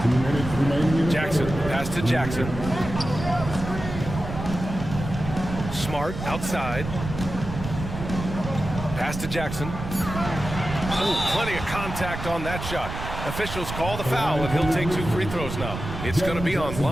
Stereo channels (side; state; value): right; noise; rumble, 7 dB below the sound